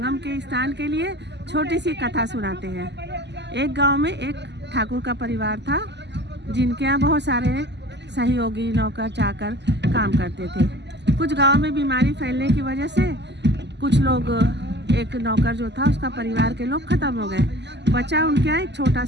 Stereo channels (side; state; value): left; late; 0.50 ms